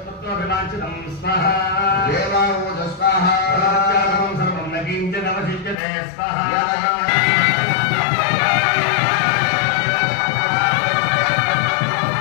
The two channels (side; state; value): right; drops out; at 5.8 s